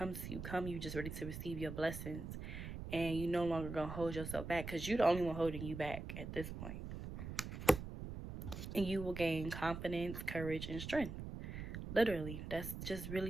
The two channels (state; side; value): noise; right; rumble, 7 dB below the sound